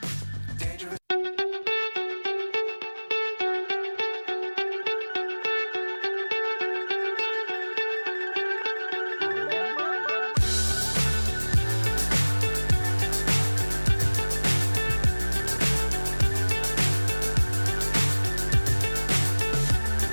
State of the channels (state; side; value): inverted; both; correlation -1.00